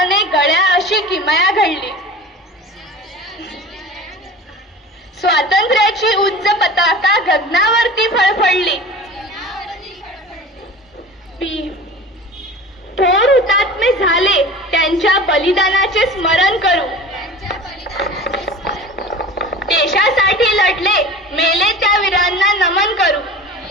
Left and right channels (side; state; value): both; normal; correlation 0.37